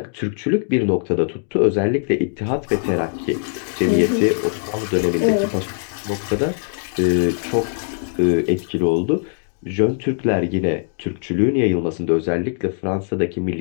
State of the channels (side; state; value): right; silent; digital silence